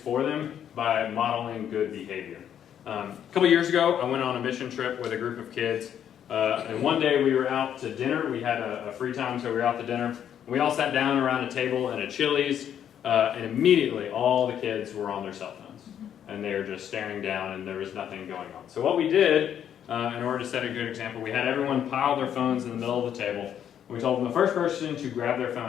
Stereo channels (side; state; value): right; quieter; 9.5 dB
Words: them by modeling good behavior. A couple years ago, I went on a mission trip with a group of kids. And one day we were out to dinner. We had a free time, so we were out to dinner. We all sat down around a table in a Chili's, and immediately all the kids were on their cell phones. And they were just staring down, and there was nothing going on. So what we did, in order to set a good example, we had everyone pile their phones in the middle of the table. We told them the first person to grab their